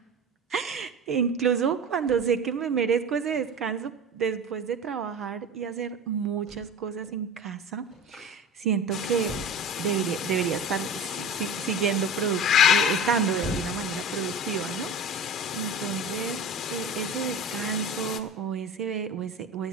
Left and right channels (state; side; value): normal; both; correlation 0.33